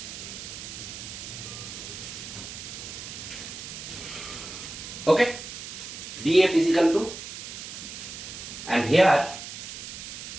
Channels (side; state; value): right; noise; hiss, 10 dB below the sound